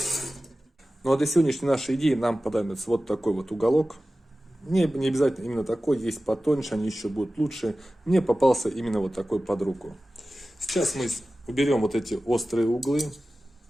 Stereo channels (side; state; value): both; normal; correlation 0.95